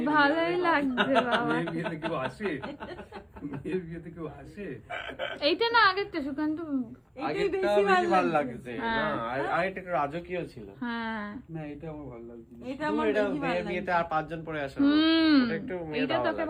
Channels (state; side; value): identical; both; correlation 1.00